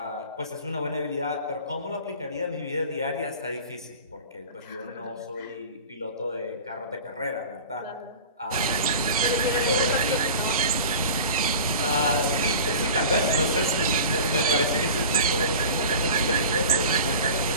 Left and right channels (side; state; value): both; inverted; correlation -0.37